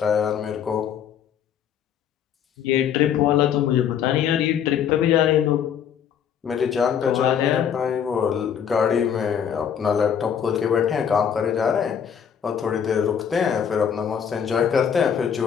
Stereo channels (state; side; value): quieter; right; 8.2 dB